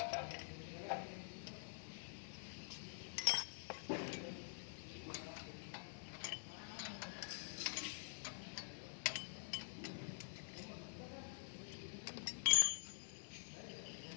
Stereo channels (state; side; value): silent; right; digital silence